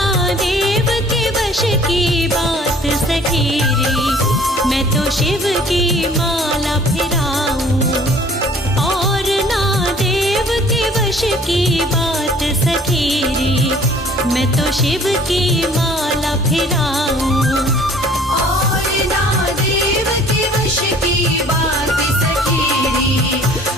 देव के वश की बात सखेरी मैं तो शिव की माला फिराऊं और ना देव के वश की बात सखेरी मैं तो शिव की माला फिराऊं और ना देव के वश की बात सखेरी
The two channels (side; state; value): both; normal; correlation 0.53